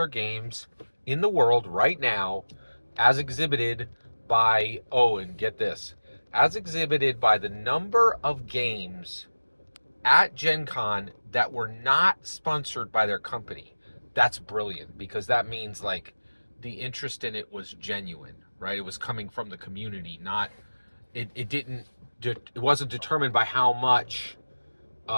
games in the world right now, as exhibited by, oh, and get this, as exhibited by the number of games at Gen Con that were not sponsored by their company. That's brilliant because that means like the interest in it was genuine, right? It was coming from the community, not it didn't it wasn't determined by how much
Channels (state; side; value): inverted; both; correlation -1.00